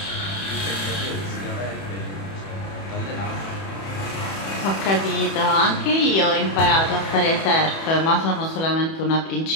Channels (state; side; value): late; right; 31 ms